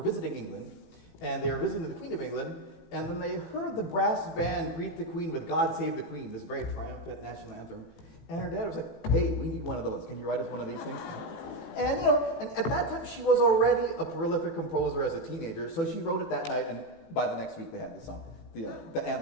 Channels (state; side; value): late; right; 18 ms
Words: England, and they were visiting the Queen of England, and then they heard the brass band greet the Queen with God Save the Queen, this very triumphant national anthem. And her dad was like, hey, we need one of those. Can you write us one of these things? And and at that time she was already a prolific composer as a teenager, so she wrote it that night, and by the next week they had the song, the